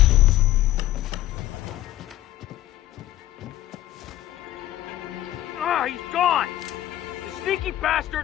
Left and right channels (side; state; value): right; quieter; 14.0 dB